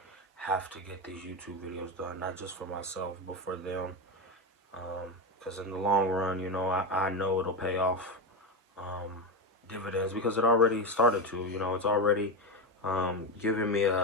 have to get these YouTube videos done, not just for myself, but for them. Because in the long run, you know, I know it'll pay off dividends, because it already started to. You know, it's already giving me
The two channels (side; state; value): both; normal; correlation 0.15